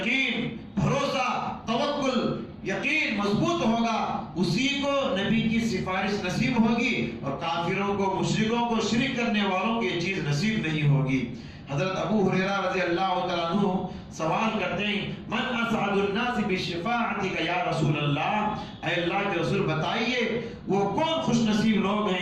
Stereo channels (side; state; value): both; identical; correlation 1.00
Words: بھروسہ، توکل، یقین مضبوط ہوگا، اسی کو نبی کی سفارش نصیب ہوگی، اور کافروں کو، مشرکوں کو، شرک کرنے والوں کو یہ چیز نصیب نہیں ہوگی۔ حضرت ابو ہریرہ رضی اللہ تعالیٰ عنہ سوال کرتے ہیں، من اسعد الناس بشفاعتک یا رسول اللہ، اے اللہ کے رسول بتائیے وہ کون خوش نصیب لوگ